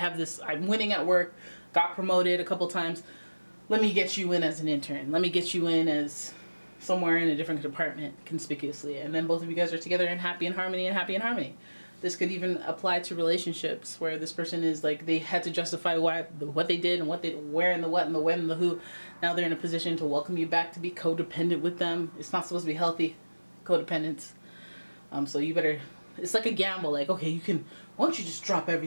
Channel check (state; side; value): inverted; both; correlation -1.00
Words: this, I'm winning at work, got promoted a couple times, let me get you in as an intern. Let me get you in as somewhere in a different department conspicuously. And then both of you guys are together and happy and harmony and happy and harmony. This could even apply to relationships where this person is like, they had to justify what they did and what they, where and the what and the when and the who. Now they're in a position to welcome you back to be codependent with them. It's not supposed to be healthy codependence. So you better, it's like a gamble. Like, okay, you can, why don't you just drop